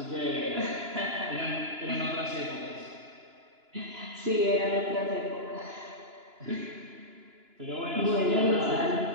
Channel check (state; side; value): late; left; 2.9 ms